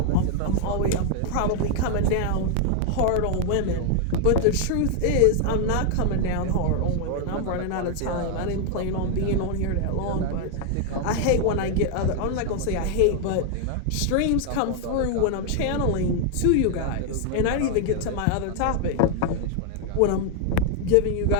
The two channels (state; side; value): different; both; correlation 0.00